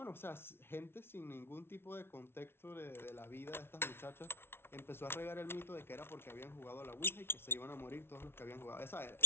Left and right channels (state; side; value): late; right; 0.12 ms